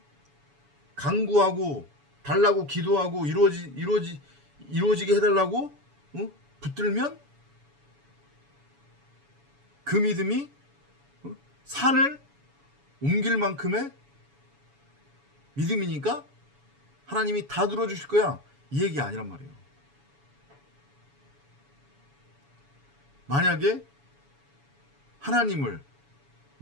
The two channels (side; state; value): left; late; 7.1 ms